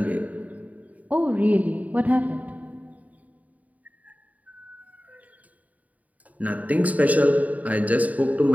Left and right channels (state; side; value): late; left; 0.072 ms